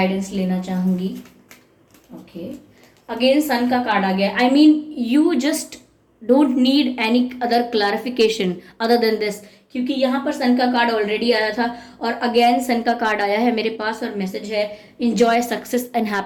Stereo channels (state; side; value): identical; both; correlation 1.00